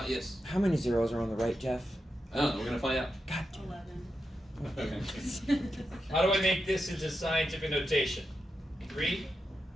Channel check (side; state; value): both; normal; correlation 0.87